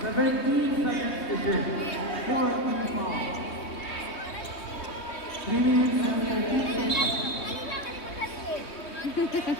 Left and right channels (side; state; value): right; late; 3.2 ms